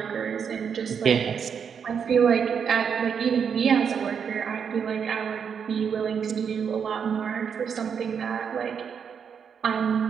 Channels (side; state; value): left; quieter; 7.0 dB